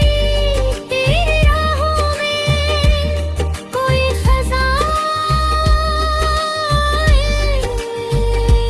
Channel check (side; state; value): both; identical; correlation 1.00